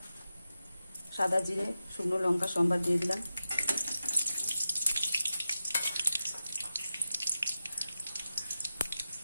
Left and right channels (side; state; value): both; inverted; correlation -0.91